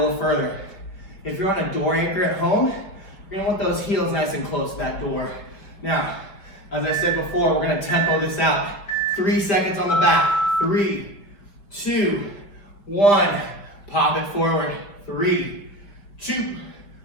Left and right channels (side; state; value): right; late; 5.1 ms